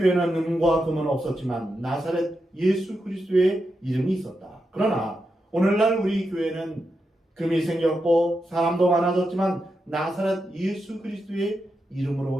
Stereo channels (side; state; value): both; normal; correlation 0.86